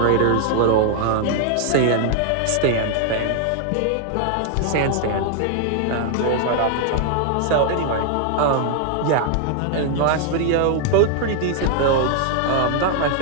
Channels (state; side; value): different; both; correlation 0.00